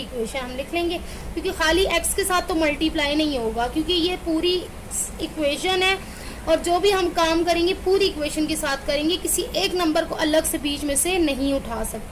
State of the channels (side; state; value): both; identical; correlation 1.00